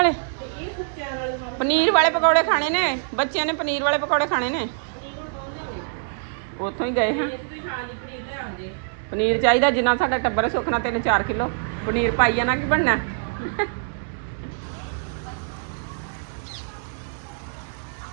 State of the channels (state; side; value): silent; left; digital silence